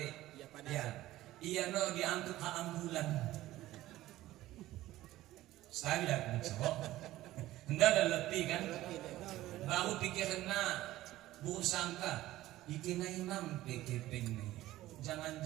Ya, iya no diangkut ke ambulan. Sekali dah cowok, hendak udah letih kan? Bahu pikirnya bu sangka ikina imam PKP nih,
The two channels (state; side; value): quieter; left; 15.8 dB